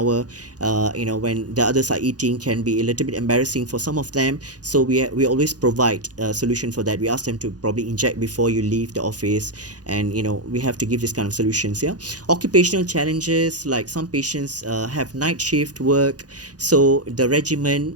when the others are eating, can be a little bit embarrassing for some of them. So we always provide a solution for that. We ask them to probably inject before you leave the office, and we have to give this kind of solutions. Yeah, occupational challenges, like some patients have night shift work, so the regimen,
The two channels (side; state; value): left; late; 0.68 ms